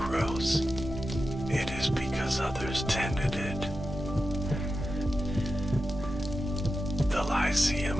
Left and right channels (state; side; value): normal; both; correlation 0.91